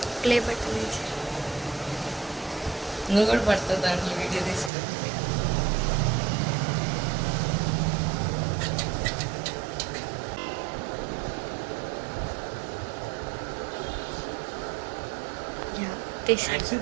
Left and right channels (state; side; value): drops out; left; at 4.7 s